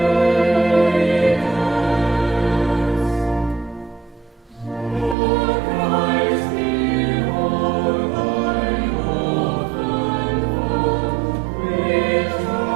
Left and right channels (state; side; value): drops out; left; at 5.2 s